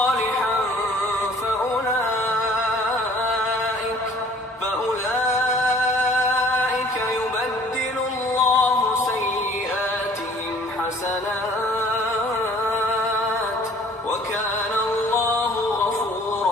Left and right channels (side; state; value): both; normal; correlation 0.53